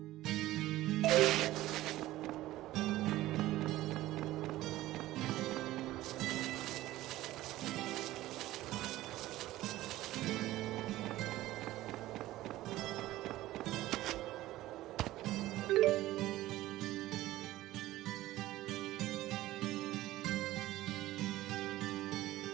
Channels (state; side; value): quieter; left; 16.1 dB